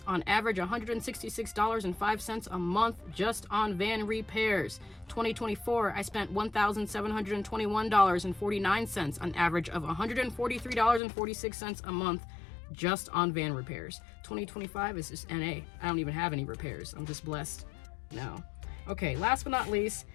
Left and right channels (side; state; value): right; drops out; at 11.0 s